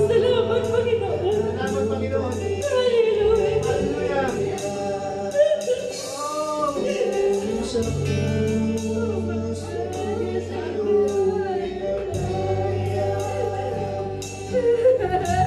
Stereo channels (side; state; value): both; identical; correlation 1.00